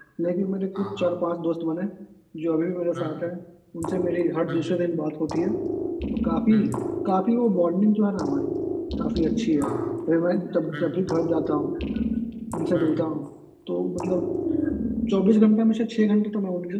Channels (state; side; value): identical; both; correlation 1.00